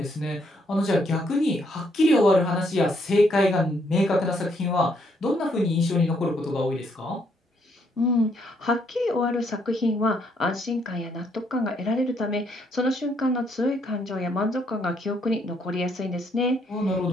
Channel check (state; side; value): normal; both; correlation 0.72